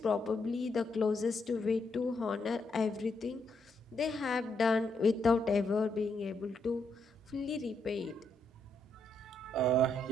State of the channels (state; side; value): normal; both; correlation 0.78